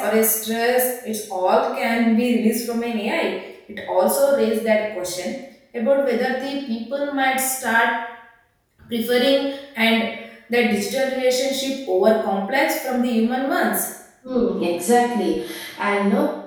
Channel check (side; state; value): both; identical; correlation 1.00